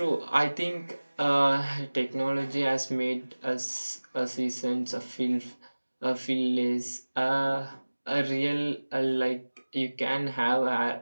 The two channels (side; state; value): both; inverted; correlation -1.00